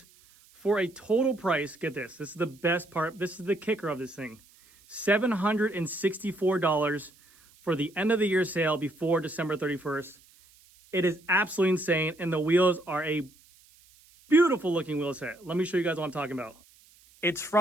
for a total price. Get this. This is the best part. This is the kicker of this thing. $764 for the end of the year sale before December 31st. It is absolutely insane, and the wheels are a beautiful looking wheel set. Let me show you guys what I'm talking about. It's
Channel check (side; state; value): right; noise; hiss, 28 dB below the sound